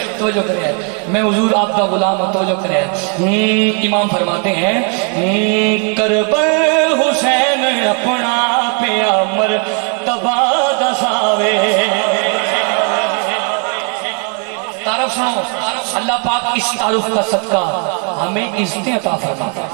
میں حضور آپ کا غلام ہوں، توجہ کرے۔ امام فرماتے ہیں کربل حسین اپنا پیامر تبا دساوے، تعارف سنو، اللہ پاک اس تعارف کا صدقہ ہمیں عزتیں عطا فرماتا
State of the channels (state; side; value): quieter; left; 39.1 dB